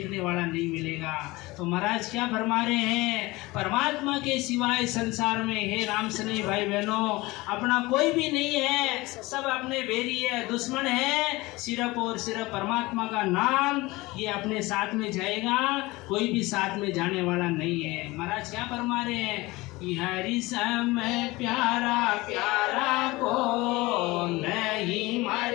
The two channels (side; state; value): right; quieter; 21.2 dB